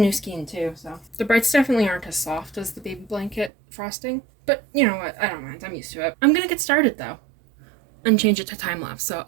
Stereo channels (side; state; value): left; drops out; at 3.5 s